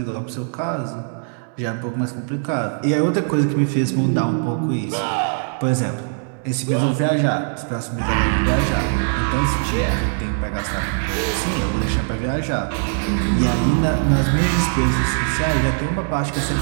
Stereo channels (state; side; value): silent; left; digital silence